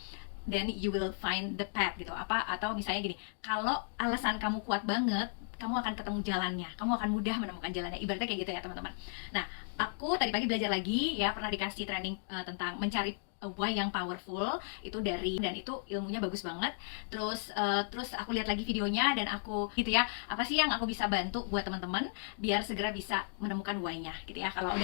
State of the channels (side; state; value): right; silent; digital silence